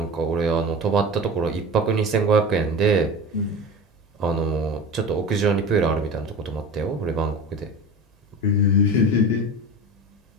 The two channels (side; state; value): both; normal; correlation 0.32